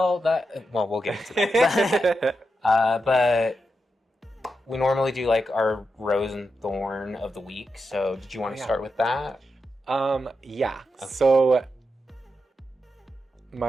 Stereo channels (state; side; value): normal; both; correlation 0.87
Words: we'll get into that. But we normally do like our rose and thorn of the week. So did you want to start with that? Yeah. Okay. So